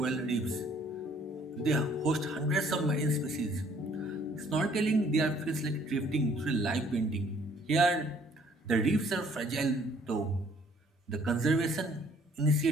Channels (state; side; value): normal; both; correlation 0.61